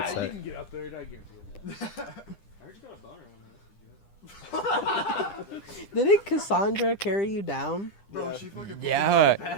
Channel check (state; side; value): late; right; 10 ms